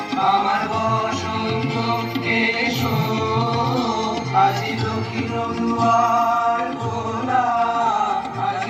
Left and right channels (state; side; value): identical; both; correlation 1.00